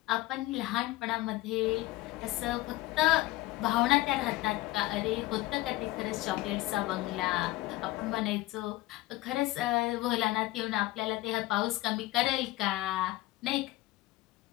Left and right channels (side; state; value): right; quieter; 18.1 dB